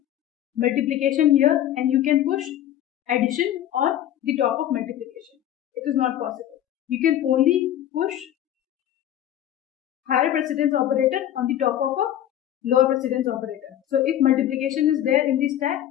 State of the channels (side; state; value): right; quieter; 11.6 dB